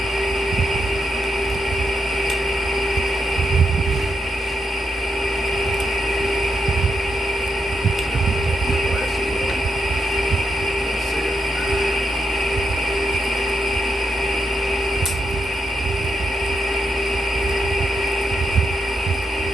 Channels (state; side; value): normal; both; correlation 0.82